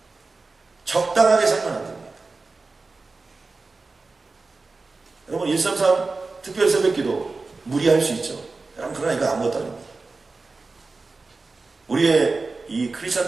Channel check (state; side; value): quieter; left; 3.8 dB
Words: 적당하게 살면 안 됩니다. 여러분 133 특별 새벽기도 무리할 수 있죠. 그러나 이거 아무것도 아닙니다. 우리의 이